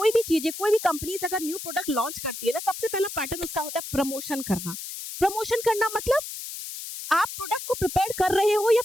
भी चीजें, कोई भी कंपनीज अगर न्यू प्रोडक्ट लॉन्च करती है ना, सबसे पहला पैटर्न उसका होता है प्रमोशन करना। प्रमोशन करना मतलब आप प्रोडक्ट को प्रिपेयर कर रहे हो या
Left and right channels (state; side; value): noise; left; hiss, 9 dB below the sound